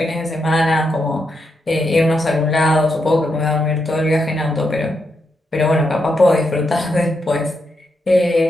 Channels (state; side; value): normal; both; correlation 0.83